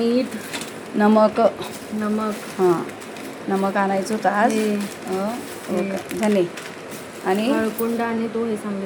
नमक. नमक, हां नमक आणायचं होतं आज. धने आणि हळकुंड आणि तो हे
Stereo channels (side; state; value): both; identical; correlation 1.00